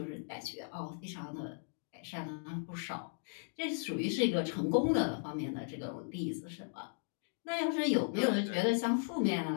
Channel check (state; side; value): silent; right; digital silence